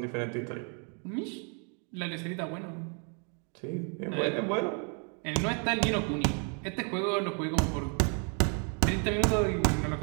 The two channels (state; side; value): quieter; left; 39.4 dB